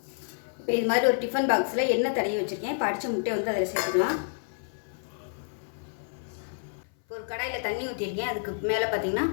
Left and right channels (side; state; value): right; silent; 57 dB below the other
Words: இப்போ இது மாதிரி ஒரு டிஃபன் பாக்ஸில் எண்ணெய் தடவி வச்சுருக்கேன். இப்போ அடித்த முட்டையை அதில் சேர்த்துக்கலாம். இப்போ ஒரு கடாயில் தண்ணி ஊற்றிருக்கேன். அதுக்கு மேலே பார்த்திங்கன்னா